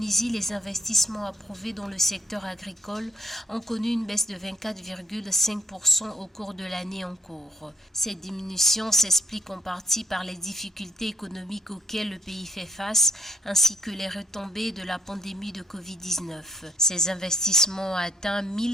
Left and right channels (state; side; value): normal; both; correlation 0.68